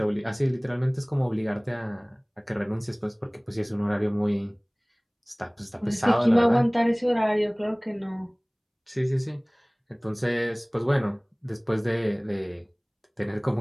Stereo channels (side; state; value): both; identical; correlation 1.00